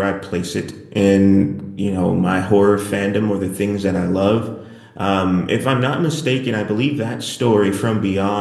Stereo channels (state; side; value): identical; both; correlation 1.00